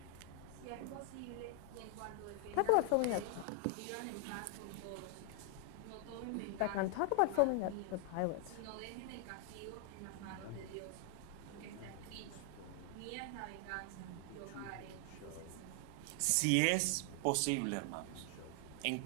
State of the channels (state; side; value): different; both; correlation 0.00